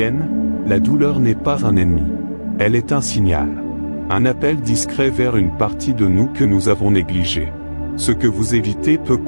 la douleur n'est pas un ennemi. Elle est un signal. Un appel discret vers une partie de nous que nous avons négligée. Ce que vous évitez peut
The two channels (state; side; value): inverted; both; correlation -1.00